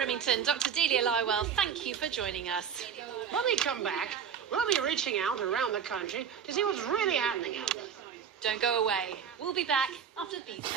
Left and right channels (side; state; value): left; quieter; 7.7 dB